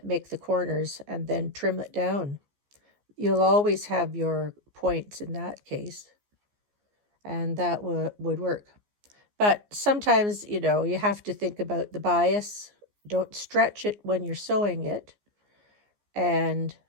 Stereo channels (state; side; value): late; left; 14 ms